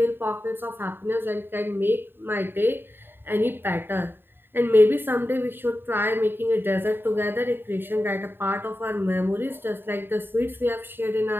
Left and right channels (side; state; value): left; late; 0.10 ms